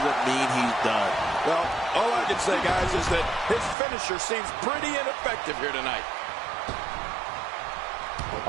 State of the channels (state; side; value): drops out; left; at 3.8 s